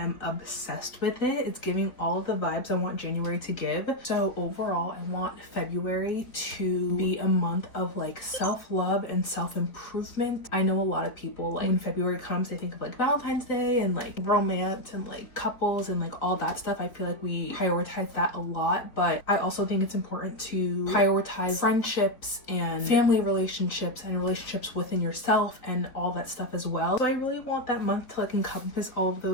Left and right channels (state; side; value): late; right; 3.8 ms